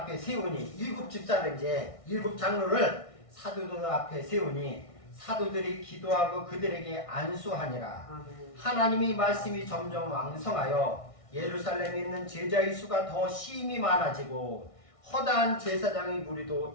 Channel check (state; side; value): late; right; 1.6 ms